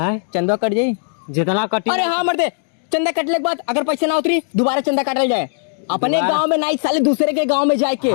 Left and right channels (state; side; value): silent; right; digital silence